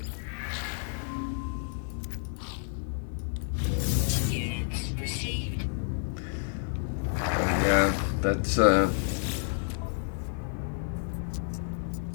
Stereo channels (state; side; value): silent; right; digital silence